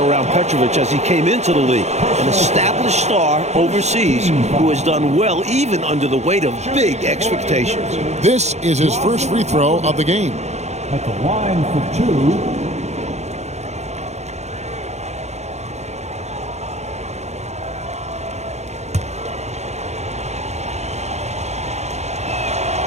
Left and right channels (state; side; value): late; left; 0.32 ms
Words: Petrovic as he came into the league. An established star overseas who has done well even under the weight of big expectations. This is his first free throw of the game. At the line for